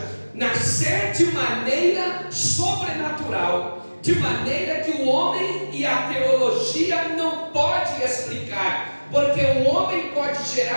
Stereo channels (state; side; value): inverted; both; correlation -1.00